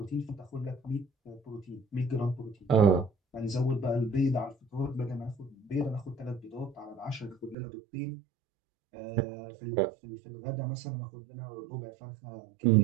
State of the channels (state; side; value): drops out; left; at 7.6 s